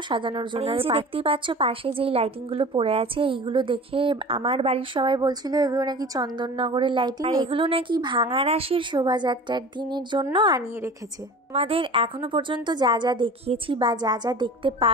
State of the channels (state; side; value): normal; both; correlation 0.38